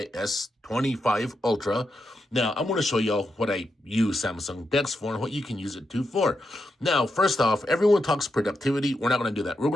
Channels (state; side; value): normal; both; correlation 0.85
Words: S25 Ultra. Now, I'm going to show y'all what I use Samsung DeX for and what you can use it to for. Now, first off, everyone talks productivity. We're not going to do that. We're